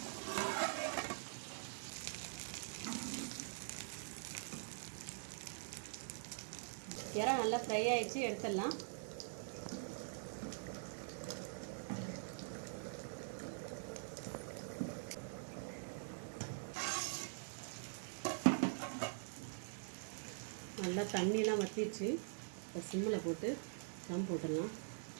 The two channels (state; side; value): silent; left; digital silence